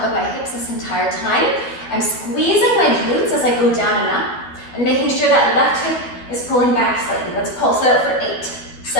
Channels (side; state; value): right; late; 12 ms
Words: of my hips this entire time. I'm squeezing my glutes as I go down and up, and making sure that left hip is pulling back slightly. Let's pulse it out for 8,